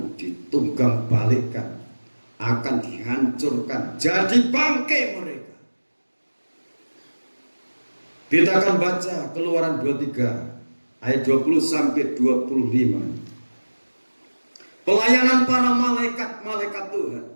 ditunggang balikkan, akan dihancurkan, jadi bangkai mereka. Kita akan baca Keluaran 23 ayat 20 sampai 25. Pelayanan para malaikat Tuhan.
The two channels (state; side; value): inverted; both; correlation -1.00